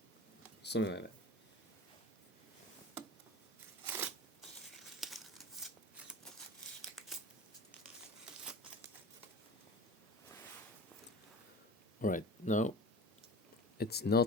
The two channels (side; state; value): both; normal; correlation 0.35